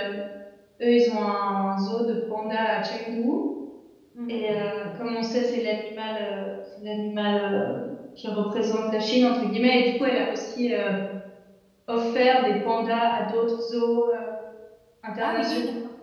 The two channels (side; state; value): both; identical; correlation 1.00